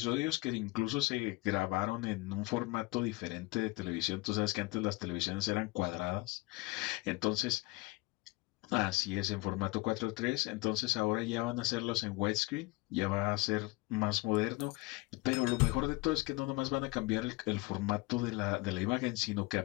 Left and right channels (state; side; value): quieter; right; 22.7 dB